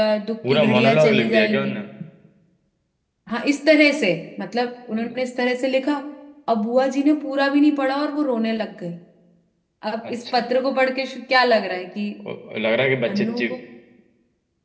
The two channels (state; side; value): identical; both; correlation 1.00